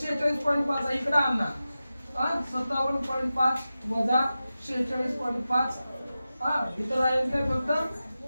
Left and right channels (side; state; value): both; inverted; correlation -0.93